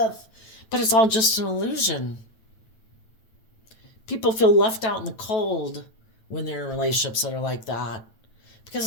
But it's all just an illusion. People feel left out in the cold when they're in relationships that are like that, because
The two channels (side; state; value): right; late; 8.9 ms